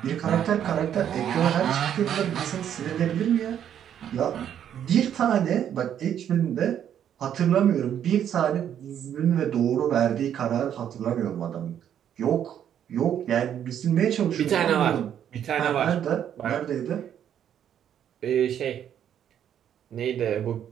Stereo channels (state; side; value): quieter; left; 9.6 dB